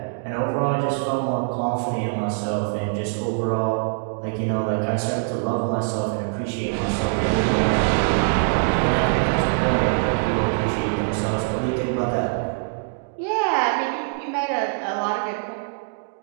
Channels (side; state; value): left; silent; 63 dB below the other